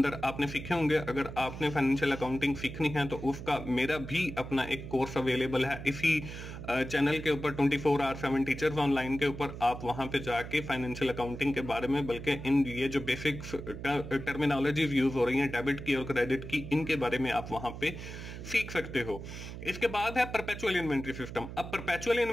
आपने सीखे होंगे। अगर आपने फाइनेंशियल अकाउंटिंग सीखनी है तो उसका मेरा भी अपना एक कोर्स अवेलेबल है इसी चैनल के ऊपर 24 आवर 7 टीचर्स ऑनलाइन के ऊपर। आप वहां पे जाके फाइनेंशियल अकाउंटिंग के बारे में, बल्कि इन ये जो बेसिक टर्मिनोलॉजीज यूज हो रही हैं डेबिट की और क्रेडिट की, इनके बारे में आप वहां पे सीख सकते हो। इसके बाद है परपेचुअल इन्वेंट्री सिस्टम। अब परपेचुअल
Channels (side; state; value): right; noise; hum, 10 dB below the sound